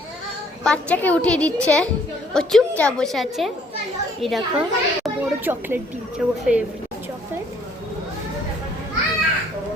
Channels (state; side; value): normal; both; correlation 0.62